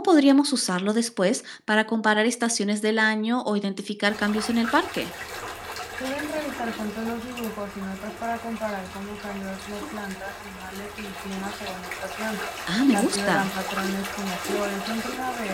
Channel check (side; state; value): both; identical; correlation 1.00